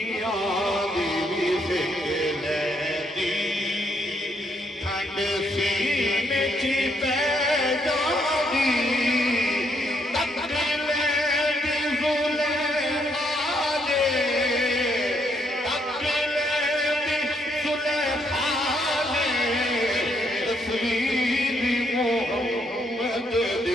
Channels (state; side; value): normal; both; correlation 0.74